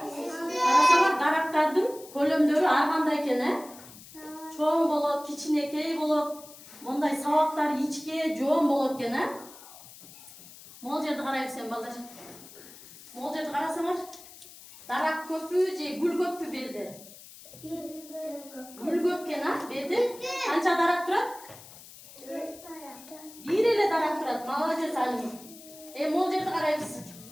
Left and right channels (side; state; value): left; noise; hiss, 19 dB below the sound